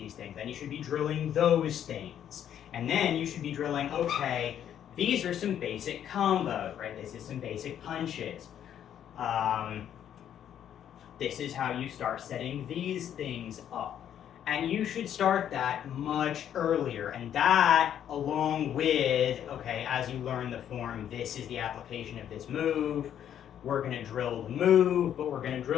things. Then you should be drilling those things. And then you should be drilling, okay, these are some basic combos, right? This is some basic punches. This is how you start setting these things up. And you should start that much earlier. And that, along with, okay, as you learn the form, this is the application of this move. We're going to drill the move, but we're going to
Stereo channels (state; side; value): quieter; right; 9.9 dB